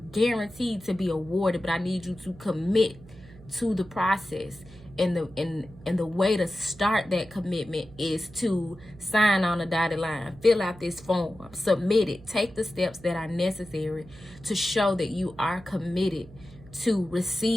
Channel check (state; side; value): noise; right; hum, 20 dB below the sound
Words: to be awarded, but I need you to commit to the process. And the way to start that commitment is to sign on a dotted line, fill out this form, submit it, take the steps that are necessary to show that you are committed to